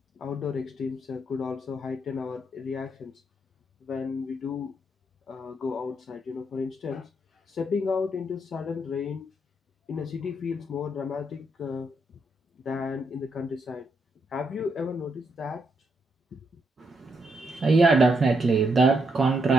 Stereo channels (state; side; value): normal; both; correlation 0.78